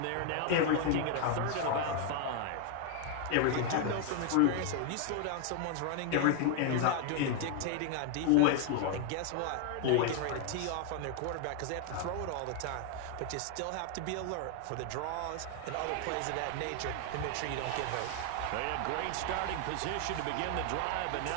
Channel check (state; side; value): different; both; correlation 0.00